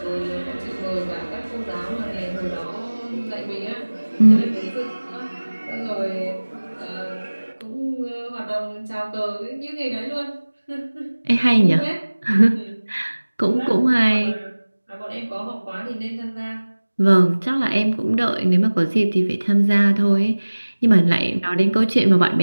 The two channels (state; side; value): inverted; both; correlation -1.00